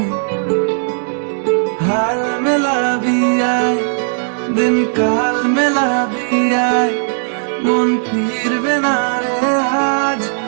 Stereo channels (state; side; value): silent; left; digital silence